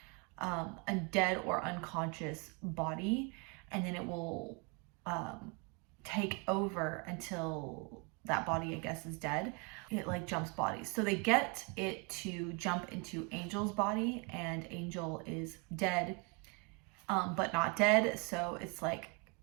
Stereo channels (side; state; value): left; quieter; 32.5 dB